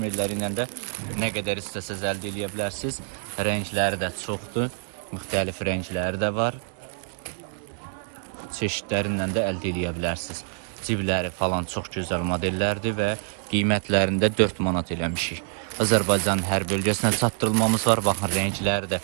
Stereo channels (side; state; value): left; silent; digital silence